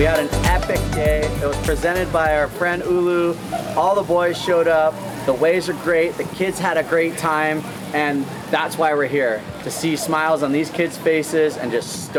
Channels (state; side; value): identical; both; correlation 1.00